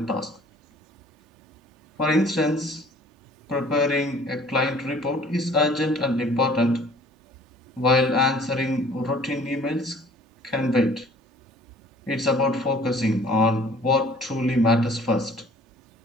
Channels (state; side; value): normal; both; correlation 0.53